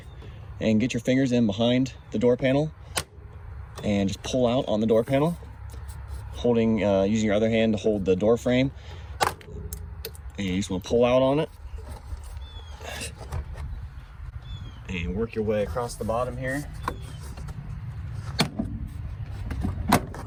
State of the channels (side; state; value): both; identical; correlation 1.00